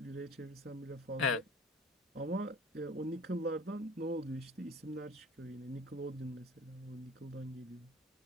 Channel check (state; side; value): normal; both; correlation 0.42